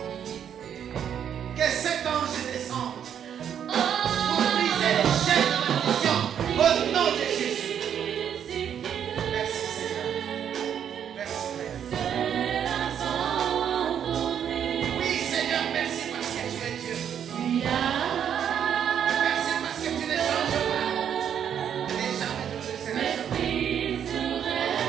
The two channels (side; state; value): left; quieter; 8.8 dB